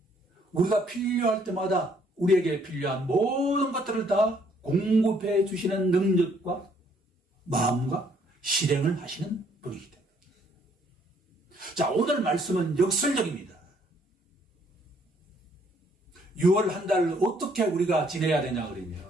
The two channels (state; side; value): normal; both; correlation 0.66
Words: 우리가 필요할 때마다 우리에게 필요한 모든 것들을 다 공급해 주시는 능력과 마음과 실행을 하시는 분이기 때문에. 자, 오늘 말씀은 역설적입니다. 6월 한 달 어떻게 우리가 지내야 되냐 그러면